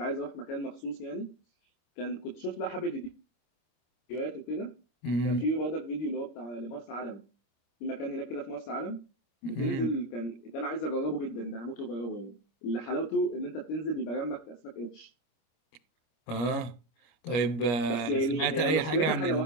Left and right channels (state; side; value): late; right; 25 ms